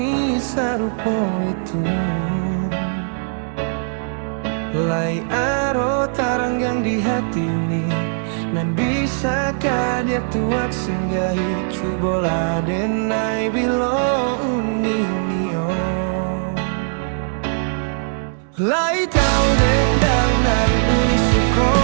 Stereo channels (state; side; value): silent; left; digital silence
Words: sarupo itu. Lai aro taranggang di hati uni, nan bisakah dia tuak singgahi cubola denai bilo uni nio. Lai tahu dendang nan uni suko,